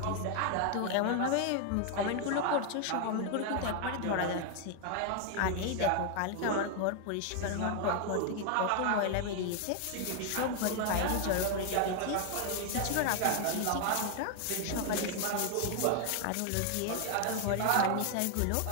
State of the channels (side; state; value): both; different; correlation 0.00